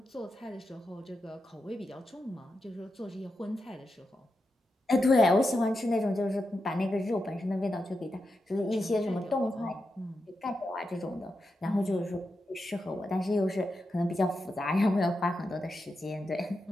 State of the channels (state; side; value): normal; both; correlation 0.88